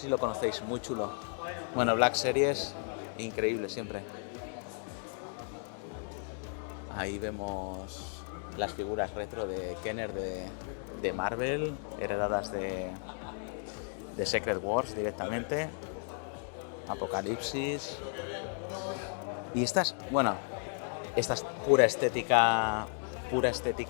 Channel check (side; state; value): right; silent; 55 dB below the other